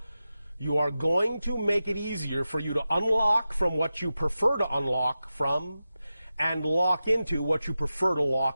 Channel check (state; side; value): inverted; both; correlation -0.93